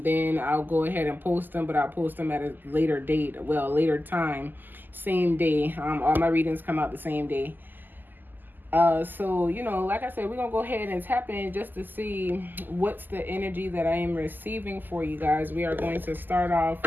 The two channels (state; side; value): late; left; 0.088 ms